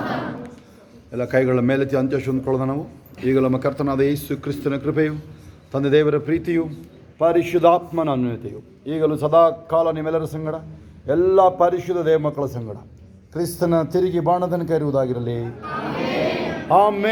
harm. ಎಲ್ಲ ಕೈಗಳ ಮೇಲೆತ್ತಿ ಅಂತ್ಯಶು ಅಂದ್ಕೊಳ್ಳೋಣ ನಾವು. ಈಗ ನಮ್ಮ ಕರ್ತನಾದ ಯೇಸು ಕ್ರಿಸ್ತನ ಕೃಪೆಯು, ತಂದೆ ದೇವರ ಪ್ರೀತಿಯು, ಪರಿಶುದ್ಧಾತ್ಮನ ಅನ್ಯೋನ್ಯತೆಯು ಈಗಲೂ ಸದಾ ಕಾಲ ನಿಮ್ಮೆಲ್ಲರ ಸಂಗಡ, ಎಲ್ಲ ಪರಿಶುದ್ಧ ದೇವ ಮಕ್ಕಳ ಸಂಗಡ ಕ್ರಿಸ್ತನ ತಿರುಗಿ ಬಾಣದನಕ ಇರುವುದಾಗಿರಲಿ.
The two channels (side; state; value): both; identical; correlation 1.00